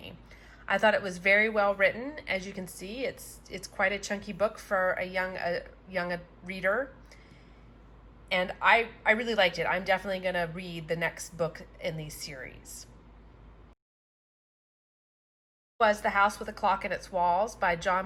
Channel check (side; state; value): both; identical; correlation 1.00